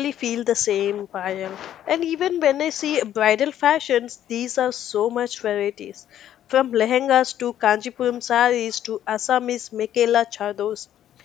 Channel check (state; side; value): quieter; right; 11.2 dB